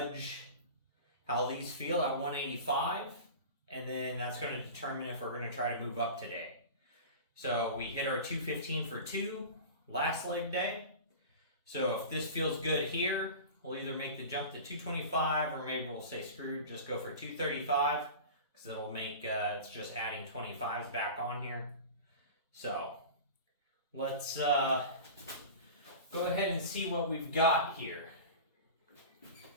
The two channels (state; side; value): inverted; both; correlation -0.33